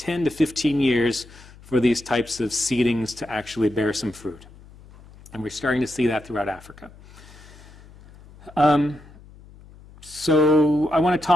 to 15 years for these types of seedings to actually bear some fruit. And we're starting to see that throughout Africa. So I want to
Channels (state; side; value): noise; left; hum, 22 dB below the sound